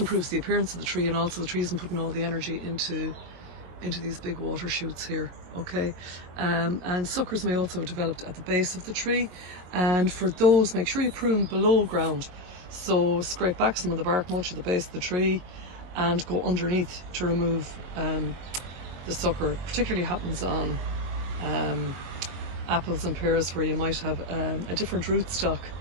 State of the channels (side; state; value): left; late; 22 ms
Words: the appearance of the tree, and also the tree isn't putting all the energy into these big water shoots here, okay? And suckers may also have developed at the base of the tree, and for those, make sure you prune below ground. So scrape back some of the bark mulch at the base of the tree and go underneath to remove the sucker. Particularly happens on apples and pears, where you might have a different rootstock